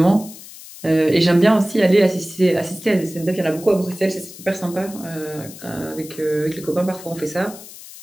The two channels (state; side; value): noise; left; hiss, 16 dB below the sound